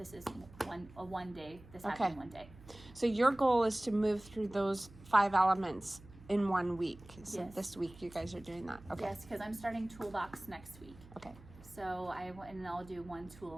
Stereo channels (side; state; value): right; noise; hum, 20 dB below the sound